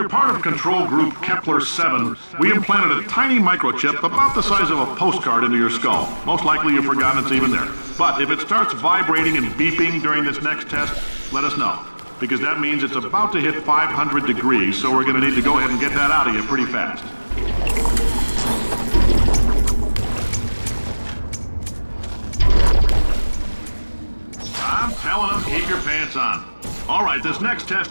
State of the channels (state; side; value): inverted; both; correlation -1.00